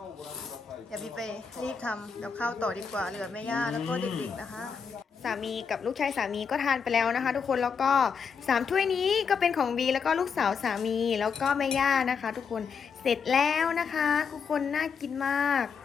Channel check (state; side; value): quieter; right; 6.1 dB